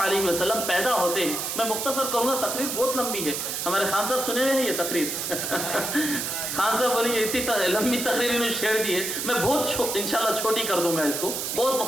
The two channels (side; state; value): right; noise; hiss, 3 dB below the sound